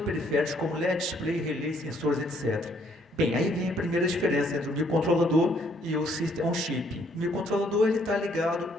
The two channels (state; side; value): normal; both; correlation 0.67